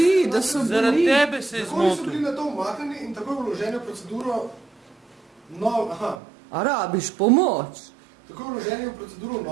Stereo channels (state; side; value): drops out; left; at 6.2 s